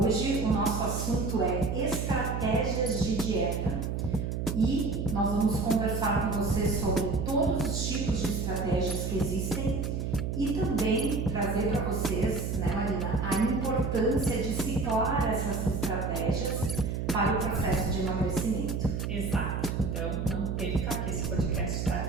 Hoje o nosso assunto é estratégias de dieta e nós vamos conversar com você sobre todos os tipos de estratégias que existem e também trazer para vocês, né, Marina, a importância de ciclar essas estratégias para o processo de emagrecimento. Exato, então não perca que esse podcast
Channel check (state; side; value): noise; right; hum, 2 dB below the sound